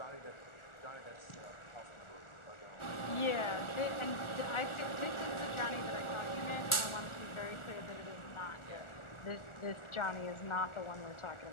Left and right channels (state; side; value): late; right; 1.4 ms